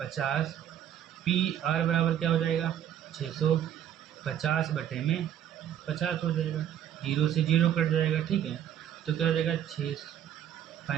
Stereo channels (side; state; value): left; quieter; 10.2 dB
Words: PR बराबर क्या हो जाएगा, 650 बटे में 50 हो जाएगा, 0 से 0 कट जाएगा। ठीक है, तो क्या हो जाएगा